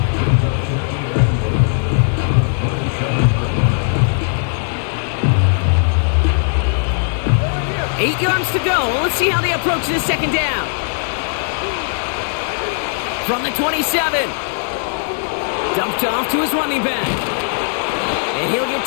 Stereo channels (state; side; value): silent; right; 67 dB below the other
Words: Eight yards to go. Let's see how they approach this 2nd down. From the 27. Dumped off to his running back. And he'll get